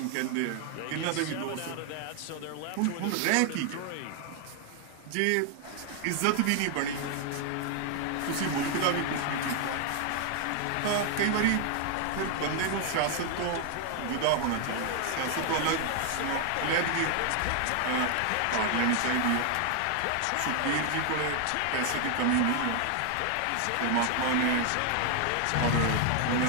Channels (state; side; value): different; both; correlation 0.00